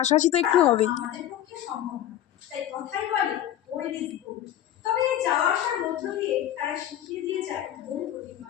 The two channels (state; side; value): quieter; right; 11.7 dB